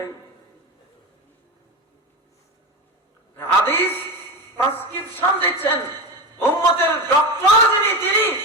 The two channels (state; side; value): normal; both; correlation 0.21